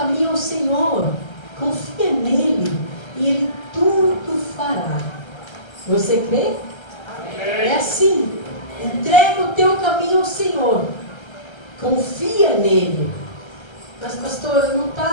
ao Senhor. Confia nele e ele tudo fará. Você crê? É assim. Entrega o teu caminho ao Senhor. Confia nele. Mas, pastora, não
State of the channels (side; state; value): right; late; 1.3 ms